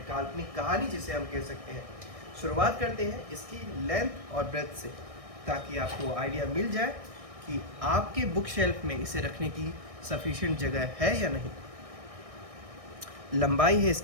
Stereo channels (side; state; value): left; late; 1.6 ms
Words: काल्पनिक कहानी जिसे हम कह सकते हैं। शुरुआत करते हैं इसकी लेंथ और ब्रेथ से, ताकि आपको आइडिया मिल जाए कि आपके बुक शेल्फ में इसे रखने की सफिशिएंट जगह है या नहीं। लंबाई है